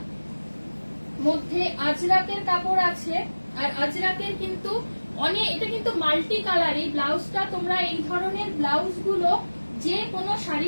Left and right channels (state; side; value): inverted; both; correlation -1.00